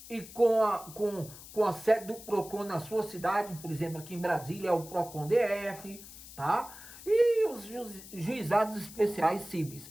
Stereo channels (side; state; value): left; noise; hiss, 16 dB below the sound